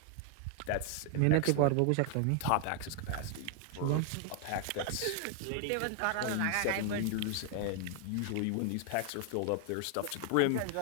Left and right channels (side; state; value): both; different; correlation 0.00